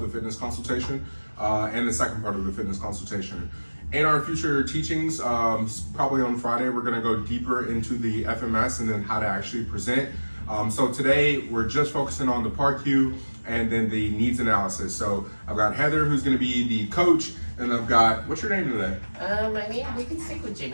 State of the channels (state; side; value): inverted; both; correlation -1.00